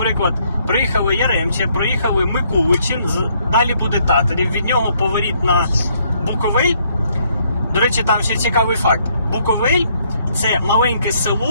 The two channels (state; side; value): inverted; both; correlation -0.69